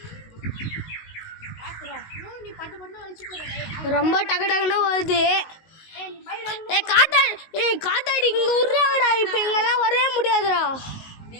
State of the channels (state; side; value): late; right; 19 ms